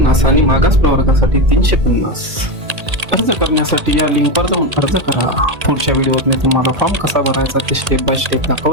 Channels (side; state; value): left; late; 1.8 ms